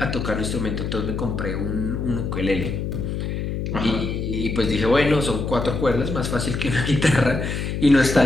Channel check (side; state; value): left; noise; hum, 3 dB below the sound